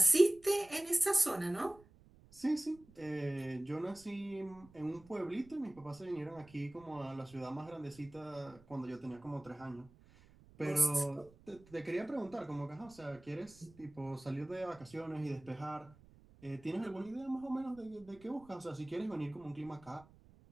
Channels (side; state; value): right; noise; rumble, 24 dB below the sound